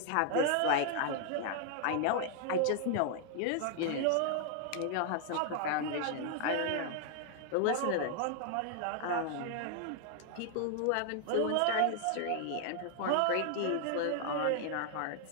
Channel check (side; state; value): both; different; correlation 0.00